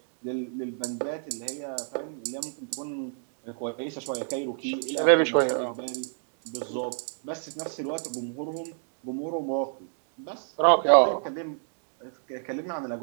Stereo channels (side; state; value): left; silent; 56 dB below the other